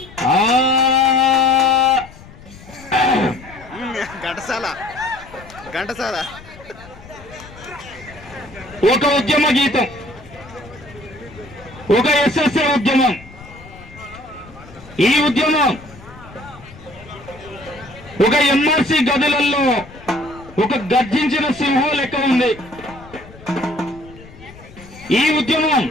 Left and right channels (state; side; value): noise; left; rumble, 20 dB below the sound